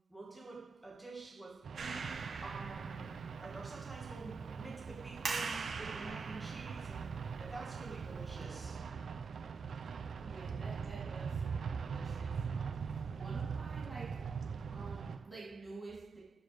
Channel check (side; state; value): left; quieter; 5.1 dB